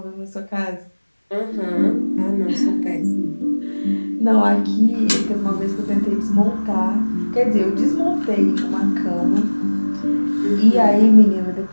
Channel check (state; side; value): inverted; both; correlation -1.00